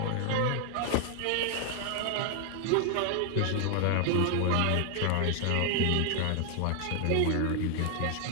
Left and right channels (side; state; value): both; different; correlation 0.00